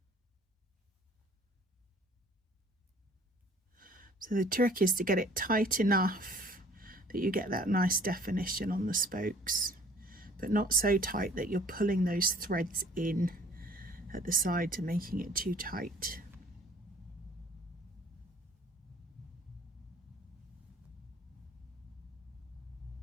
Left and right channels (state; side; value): normal; both; correlation 0.54